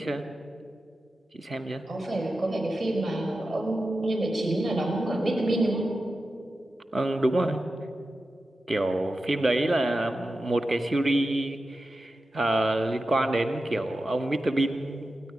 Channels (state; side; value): normal; both; correlation 0.92